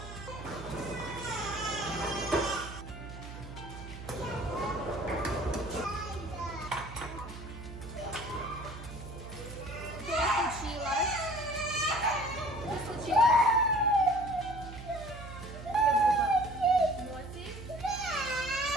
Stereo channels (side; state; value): right; noise; hum, 12 dB below the sound